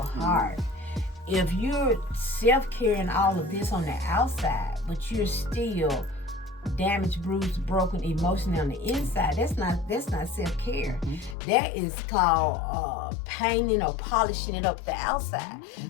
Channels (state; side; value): drops out; right; at 11.4 s